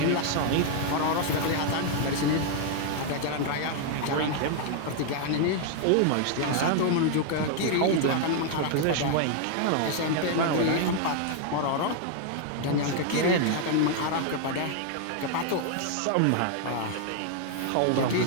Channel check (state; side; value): different; both; correlation 0.00